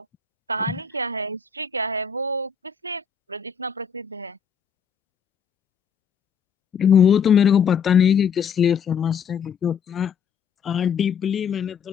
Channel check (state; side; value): quieter; right; 7.0 dB